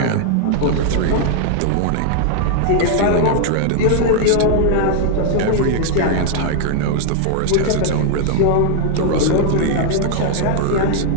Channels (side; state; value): both; different; correlation 0.00